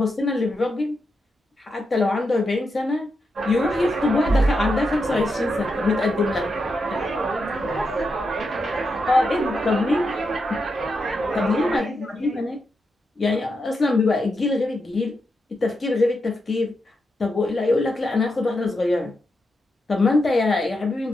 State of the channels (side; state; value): both; normal; correlation 0.85